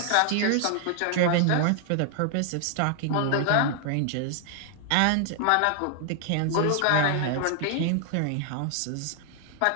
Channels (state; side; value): different; both; correlation 0.00